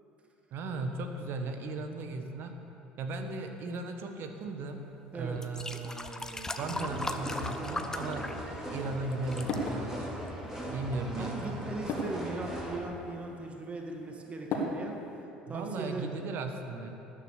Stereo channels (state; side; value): normal; both; correlation 0.53